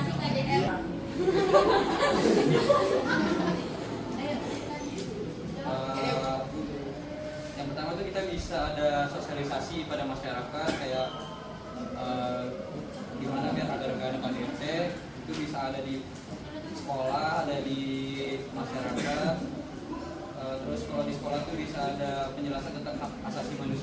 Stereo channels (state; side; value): identical; both; correlation 1.00